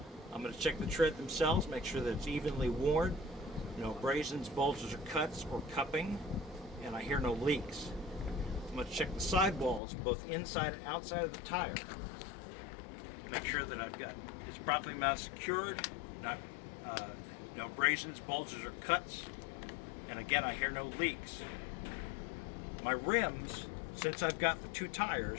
I'm going to check the tread themselves, make sure that it's evenly worn, no abrasions, bulges, or cuts, or cupping, and I hear no leaks. I'm going to check the sidewalls, both inside and outside of the tire. Make sure that it's properly mounted, secured, no abrasions, bulges, or cuts, and again, I hear no leaks. My rims, since I've got the 2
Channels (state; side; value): drops out; right; at 9.8 s